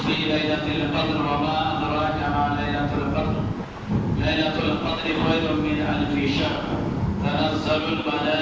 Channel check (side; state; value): both; identical; correlation 1.00